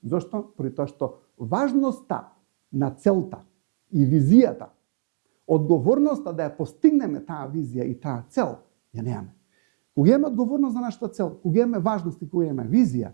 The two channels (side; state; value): left; silent; digital silence